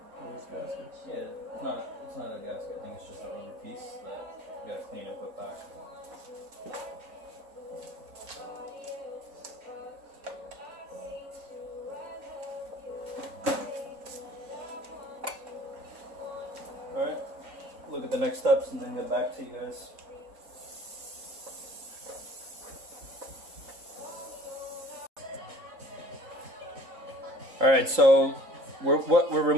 Gaskets? Yeah, it's not a gasket. I think it's just a rubber piece that you gotta clean and put back. Alright, look at the next steps and then get back to you guys. Alright, so what we're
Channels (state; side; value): late; left; 3.8 ms